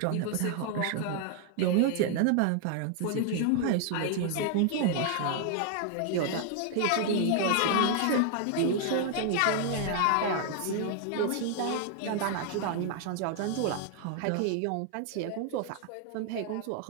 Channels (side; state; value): both; different; correlation 0.00